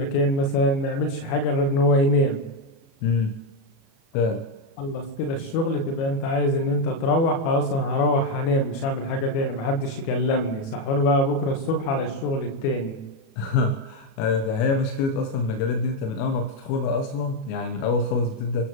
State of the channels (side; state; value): right; late; 37 ms